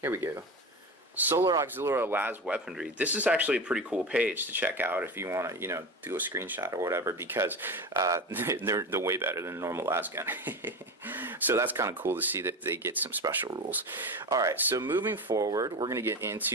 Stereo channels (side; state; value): both; normal; correlation 0.25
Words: we go. Solar Auxiliary Las Weaponry. This is actually a pretty cool page to check out if you want to, do a screenshot or whatever, because they're way better than a normal las gun. So that's kind of cool to see that they get some special rules. All right, so moving forward, we're going to get